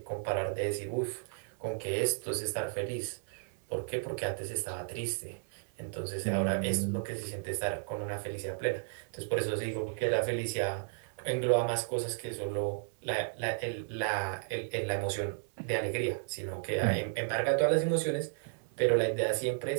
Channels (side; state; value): left; silent; 55 dB below the other